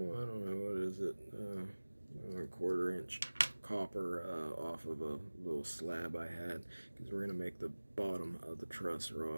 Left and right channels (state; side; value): inverted; both; correlation -1.00